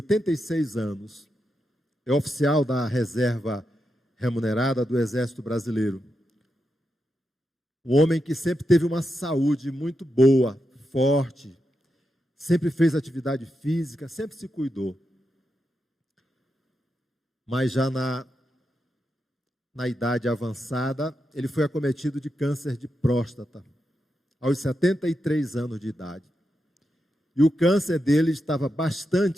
anos, é oficial da reserva remunerada do Exército Brasileiro. Um homem que sempre teve uma saúde muito boa, forte, sempre fez atividade física, sempre se cuidou. Mas já na idade avançada, ele foi acometido de câncer de próstata, aos 73 anos de idade. E o câncer dele estava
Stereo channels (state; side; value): normal; both; correlation 0.86